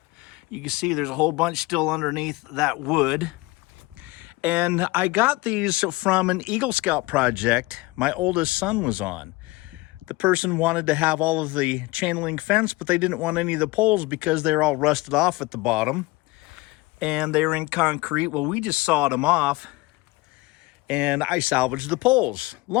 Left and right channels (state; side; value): quieter; right; 21.8 dB